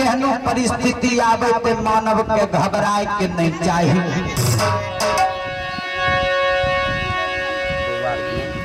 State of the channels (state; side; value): identical; both; correlation 1.00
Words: परिस्थिति आवे ते मानव के घबराए के नहीं चाहिए